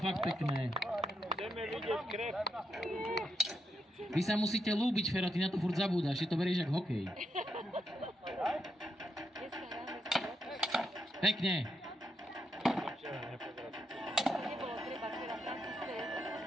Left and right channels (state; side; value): normal; both; correlation 0.82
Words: fakt pekné. Vy sa musíte ľúbiť, Fero, ty na to furt zabúdaš. Ty to berieš jak hokej. Pekne.